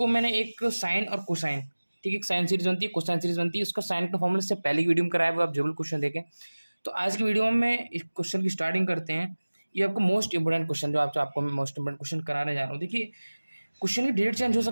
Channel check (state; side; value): inverted; both; correlation -1.00